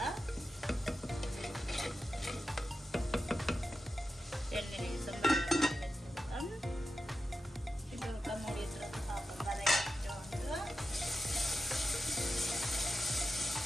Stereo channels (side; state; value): both; normal; correlation 0.90